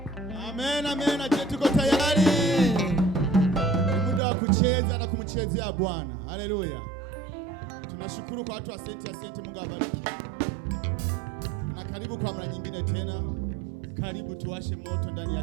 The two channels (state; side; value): drops out; left; at 4.2 s